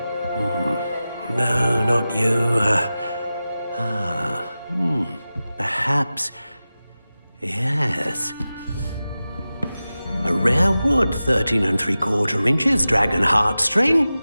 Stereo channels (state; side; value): inverted; both; correlation -0.95